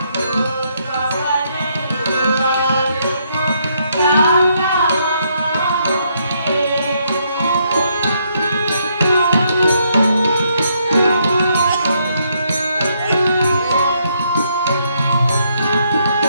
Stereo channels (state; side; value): inverted; both; correlation -0.74